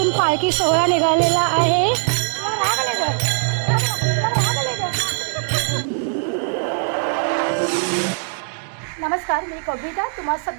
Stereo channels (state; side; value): silent; left; digital silence